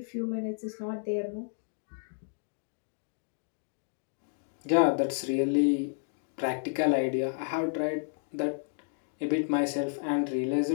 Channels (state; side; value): silent; right; digital silence